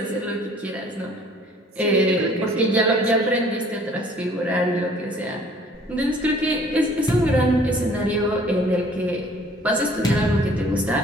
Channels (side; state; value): both; normal; correlation 0.55